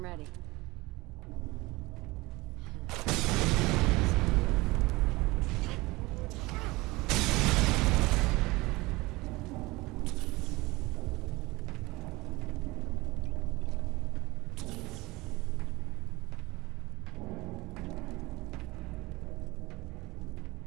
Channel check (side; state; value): left; quieter; 21.9 dB